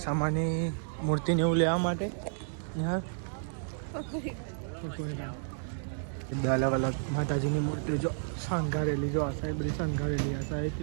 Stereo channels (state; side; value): silent; left; digital silence